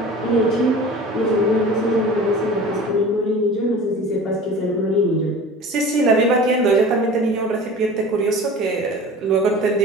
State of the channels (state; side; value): normal; both; correlation 0.39